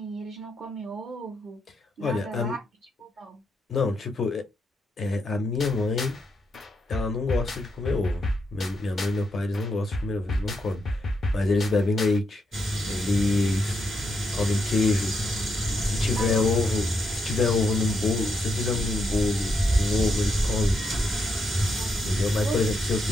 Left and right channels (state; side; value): normal; both; correlation 0.81